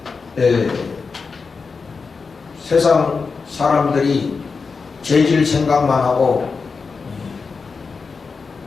세상 사람들이 죄질 생각만 하고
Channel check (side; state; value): right; quieter; 4.8 dB